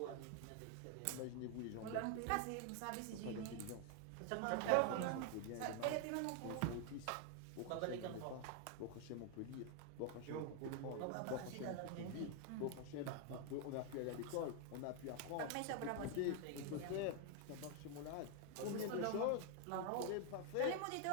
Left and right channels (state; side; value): different; both; correlation 0.00